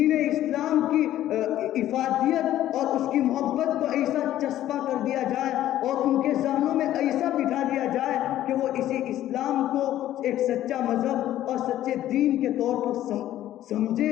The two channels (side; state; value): right; quieter; 13.0 dB